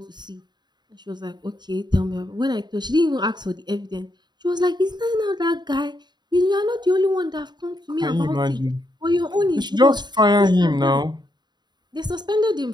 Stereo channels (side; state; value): left; late; 0.21 ms